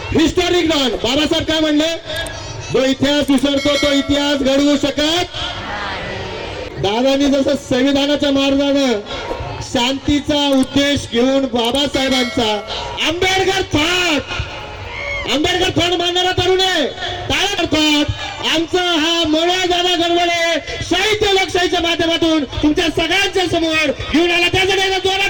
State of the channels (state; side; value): identical; both; correlation 1.00